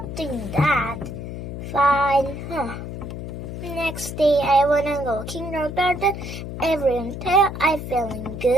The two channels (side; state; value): left; noise; hum, 7 dB below the sound